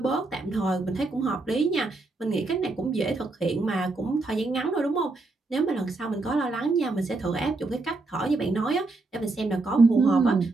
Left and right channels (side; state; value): left; quieter; 3.3 dB